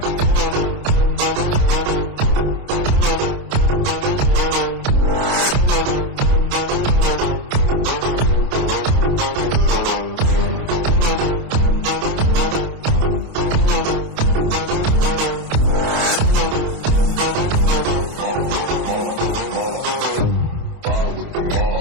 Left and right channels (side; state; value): left; late; 27 ms